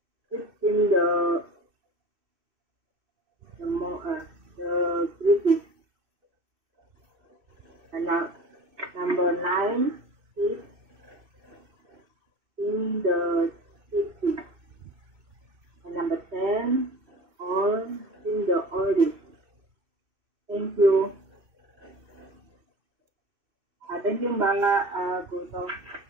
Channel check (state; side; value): late; left; 2.6 ms